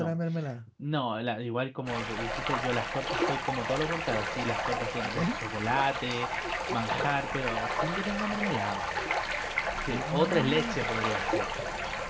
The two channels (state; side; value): identical; both; correlation 1.00